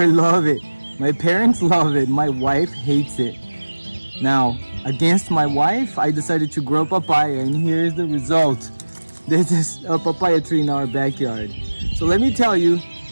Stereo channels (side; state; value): both; inverted; correlation -1.00